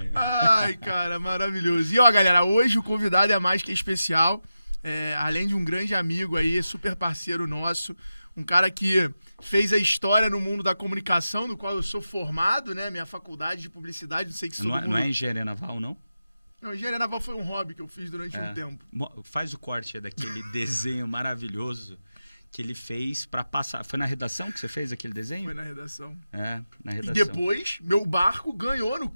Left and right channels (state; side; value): inverted; both; correlation -0.91